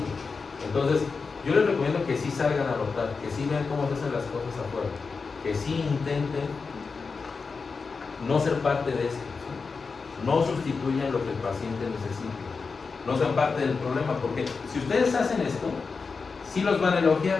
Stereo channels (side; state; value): right; quieter; 4.8 dB